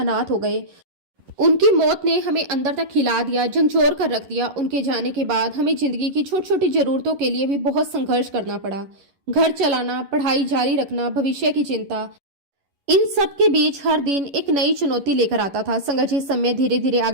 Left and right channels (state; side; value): late; left; 11 ms